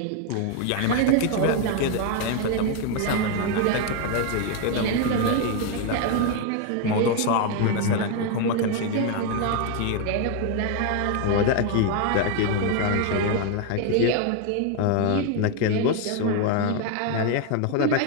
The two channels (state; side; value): different; both; correlation 0.01